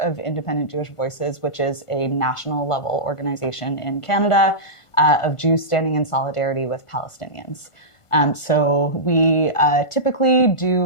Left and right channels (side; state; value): right; late; 1.5 ms